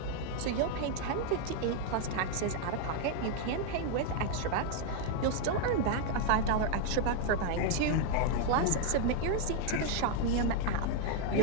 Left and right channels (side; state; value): both; different; correlation 0.01